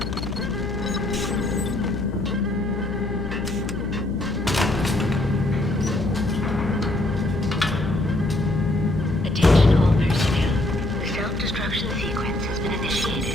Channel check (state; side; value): noise; left; hum, 7 dB below the sound